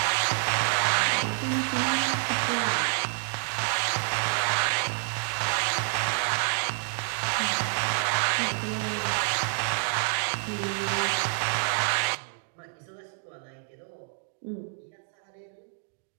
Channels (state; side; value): silent; left; 59 dB below the other